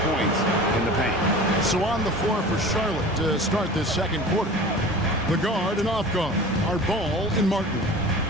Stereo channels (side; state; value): both; normal; correlation 0.38